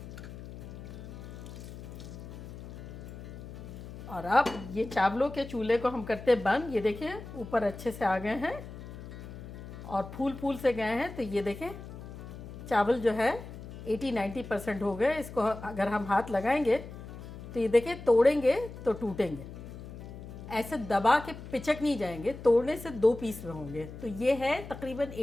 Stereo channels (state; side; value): noise; left; hum, 12 dB below the sound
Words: और अब ये चावलों के चूल्हे को हम करते बंद। ये देखिए ऊपर अच्छे से आ गए हैं और फूल फूल से गए हैं। तो ये देखें चावल जो है 80-90% हो गए। इसको अगर हम हाथ लगाएंगे तो ये देखें तोड़ेंगे तो टूटेंगे, ऐसे दबा के पिचक नहीं जाएंगे, तोड़ने से 2 पीस में होंगे। तो ये है तकरीबन